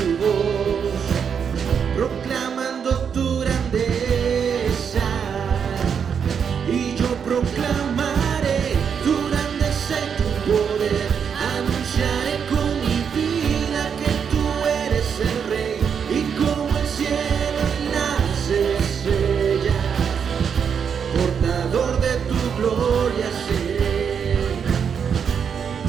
voz, proclamando tu grandeza. Y yo proclamaré tu grandeza y tu poder. Anunciaré con mi vida que tú eres el Rey. Y como el cielo y las estrellas, portador de tu gloria seré.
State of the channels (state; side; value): quieter; left; 7.1 dB